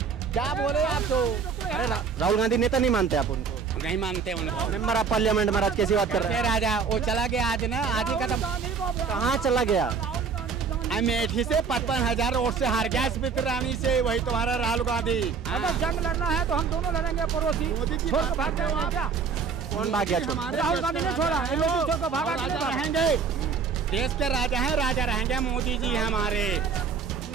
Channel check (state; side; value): quieter; left; 5.7 dB